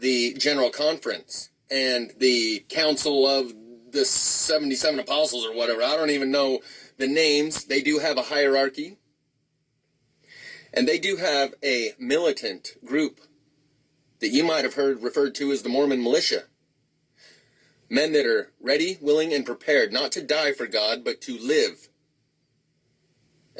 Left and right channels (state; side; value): identical; both; correlation 1.00